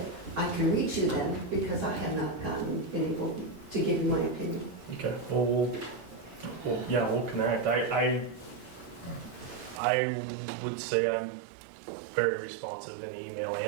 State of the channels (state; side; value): drops out; left; at 9.8 s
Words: I can reach you then, because I have not been able to give you my opinion. Okay. Well, we'll connect. I would say I'm very responsive in email